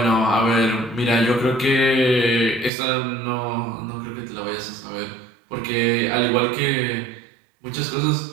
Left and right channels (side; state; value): left; drops out; at 2.7 s